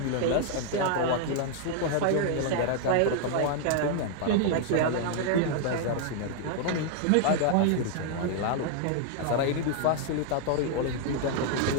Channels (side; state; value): both; different; correlation 0.00